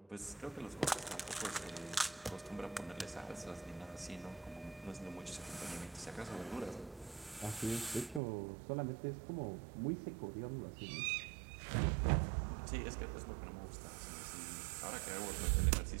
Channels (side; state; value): left; drops out; at 8.2 s